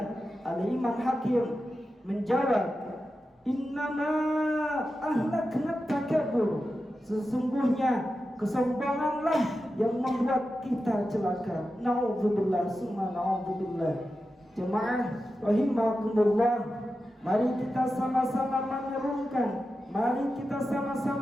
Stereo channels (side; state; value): both; normal; correlation 0.91